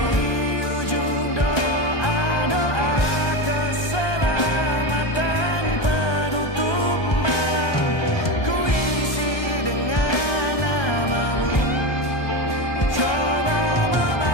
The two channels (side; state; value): right; late; 1.2 ms